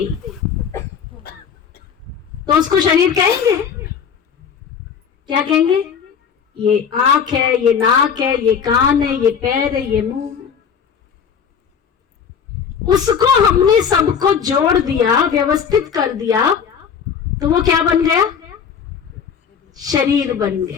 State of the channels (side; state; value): right; quieter; 7.1 dB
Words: तो उसको शरीर कहेंगे? क्या कहेंगे? ये आंख है, ये नाक है, ये कान है, ये पैर है, ये मुंह है। उसको हमने सबको जोड़ दिया, व्यवस्थित कर दिया, तो वो क्या बन गया? शरीर बन